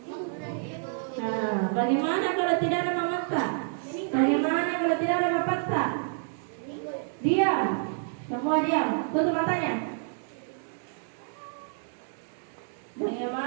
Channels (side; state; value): left; silent; digital silence